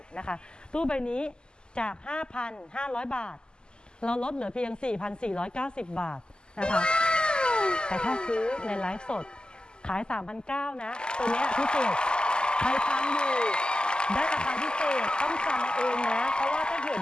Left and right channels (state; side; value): late; right; 0.047 ms